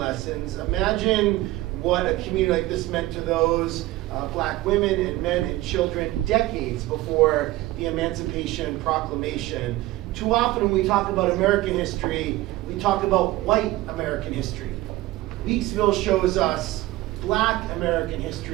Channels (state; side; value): quieter; left; 17.5 dB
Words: Imagine what a community like this meant to those black women and men and children decades before the Emancipation Proclamation. Too often when we talk about American history, we talk about white American history. Weeksville shows us black American